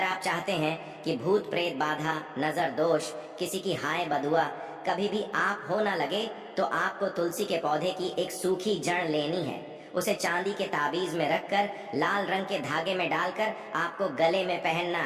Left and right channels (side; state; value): both; identical; correlation 1.00